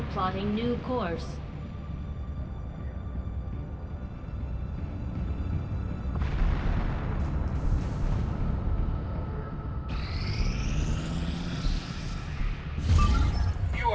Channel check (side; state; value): both; identical; correlation 1.00